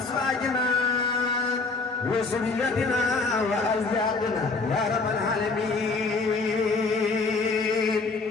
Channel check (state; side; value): quieter; right; 3.9 dB